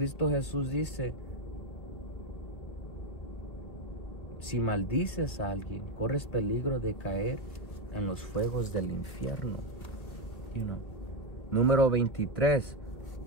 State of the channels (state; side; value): late; right; 2.0 ms